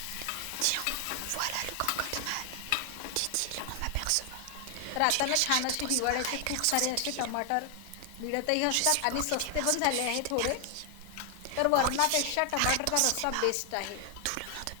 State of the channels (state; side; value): different; both; correlation 0.00